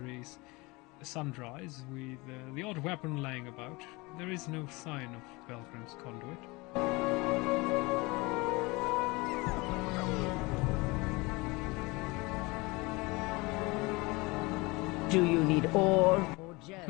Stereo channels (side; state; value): right; quieter; 24.5 dB